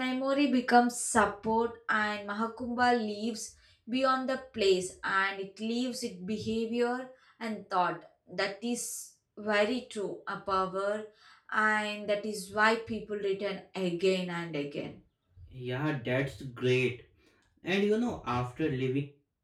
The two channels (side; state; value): both; identical; correlation 1.00